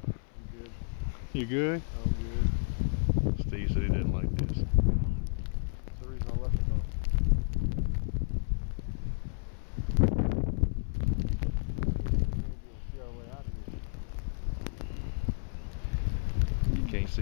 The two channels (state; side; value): silent; right; 57 dB below the other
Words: You good? I'm good. Steve said he didn't like this. That's the reason I left it though. See our way out of here. You can't